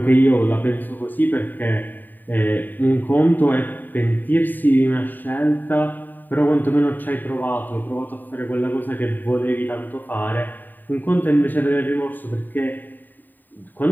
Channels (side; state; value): right; late; 0.089 ms